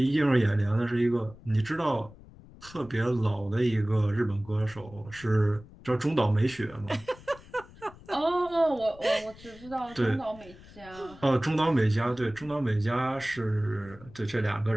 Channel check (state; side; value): noise; left; rumble, 21 dB below the sound